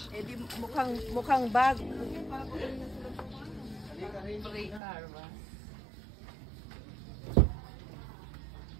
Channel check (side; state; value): left; drops out; at 4.8 s